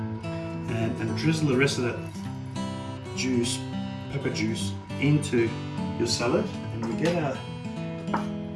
and drizzle the rest of that juice, pepper juice, into your salad, and we get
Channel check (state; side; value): identical; both; correlation 1.00